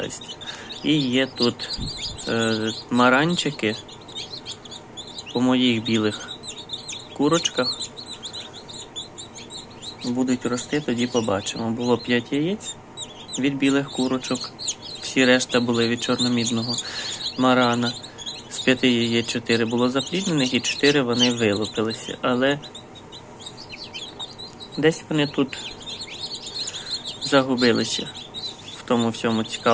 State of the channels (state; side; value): identical; both; correlation 1.00